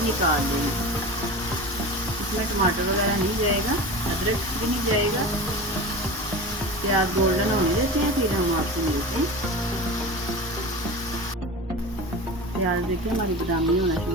निकाल देंगे। इसमें टमाटर वगैरह नहीं जाएगा, अदरक भी नहीं जाएगा। प्याज गोल्डन होने देते हैं, फिर हम आपसे मिलते हैं। प्याज देखिए हमारी बादामी होना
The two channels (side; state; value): both; normal; correlation 0.30